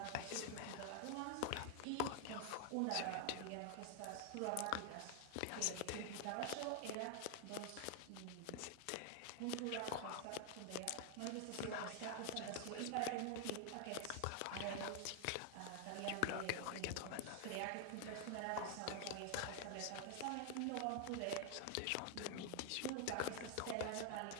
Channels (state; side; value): different; both; correlation 0.00